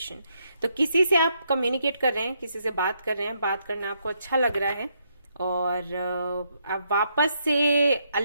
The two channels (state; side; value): inverted; both; correlation -0.76